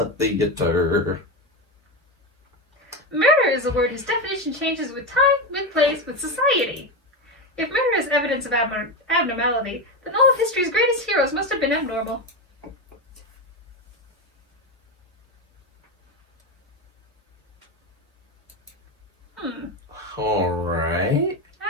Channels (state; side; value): normal; both; correlation 0.15